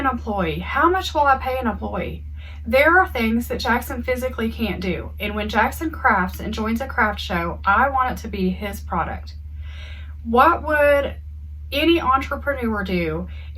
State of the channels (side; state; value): both; identical; correlation 1.00